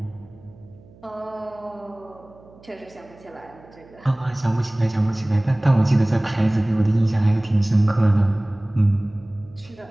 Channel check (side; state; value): right; noise; hum, 25 dB below the sound